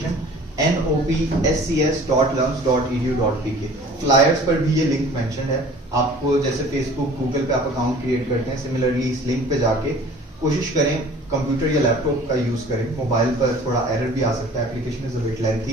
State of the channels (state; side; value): normal; both; correlation 0.47